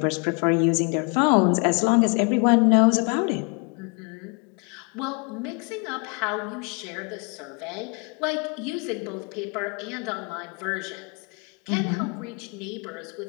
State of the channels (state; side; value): quieter; right; 34.0 dB